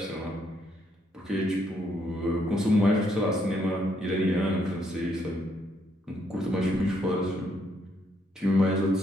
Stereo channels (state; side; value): normal; both; correlation 0.73